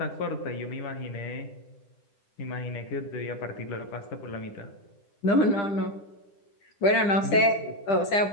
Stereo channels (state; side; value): late; right; 10 ms